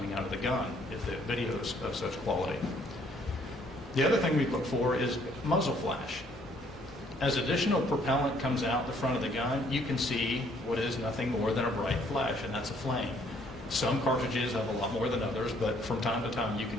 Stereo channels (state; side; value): normal; both; correlation 0.64